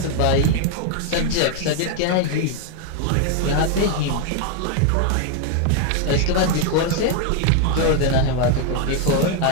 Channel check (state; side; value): different; both; correlation 0.01